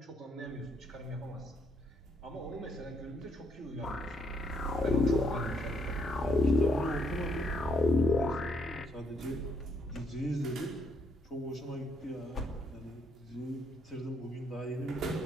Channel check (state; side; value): normal; both; correlation 0.72